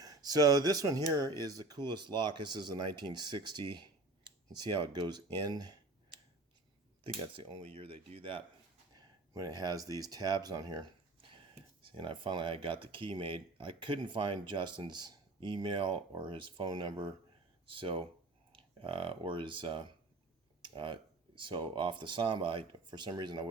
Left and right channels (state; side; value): quieter; left; 3.1 dB